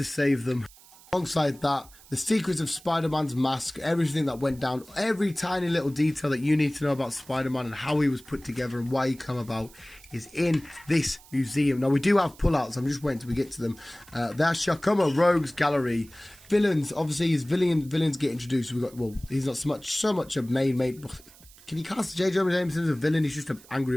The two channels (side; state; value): right; noise; hiss, 23 dB below the sound